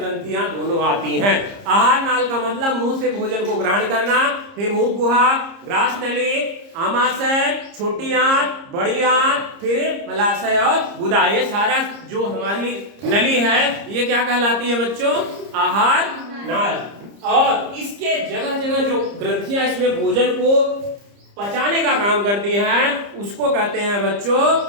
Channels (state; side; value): late; left; 30 ms